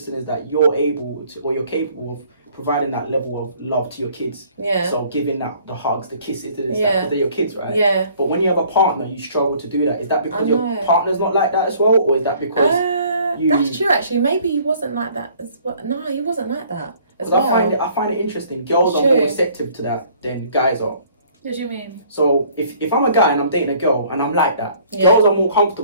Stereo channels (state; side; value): inverted; both; correlation -0.57